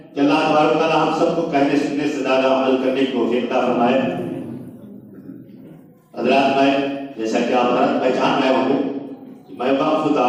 کہ اللہ تبارک تعالیٰ ہم سب کو کہنے سننے سے زیادہ عمل کرنے کی توفیق عطا فرمائے۔ حضرات، میں جیسا کہ آپ حضرات پہچان رہے ہوں گے کہ میں وقف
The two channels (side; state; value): both; identical; correlation 1.00